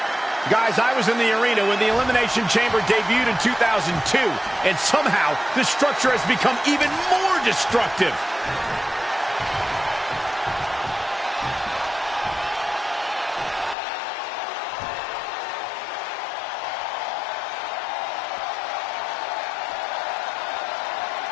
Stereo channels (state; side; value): drops out; right; at 13.8 s